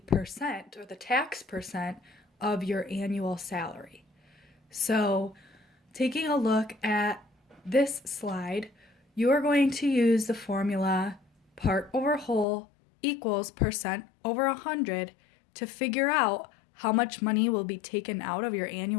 percent or the tax percent of your annual salary. So taking a look at this slide, you are going to use the formula part over whole equals percent over 100 to figure out how much money will be taken out of your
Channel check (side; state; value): right; drops out; at 12.5 s